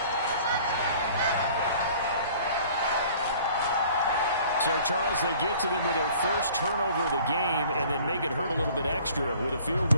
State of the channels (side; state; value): both; inverted; correlation -0.51